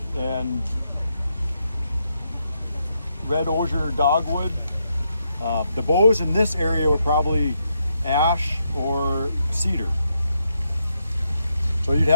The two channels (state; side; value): inverted; both; correlation -0.80